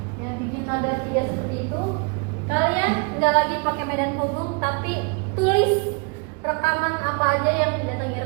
Ya, bikin ada 3 seperti itu. Kalian nggak lagi pakai medan penghubung, tapi tulis rekaman apa aja yang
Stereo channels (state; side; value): quieter; left; 33.4 dB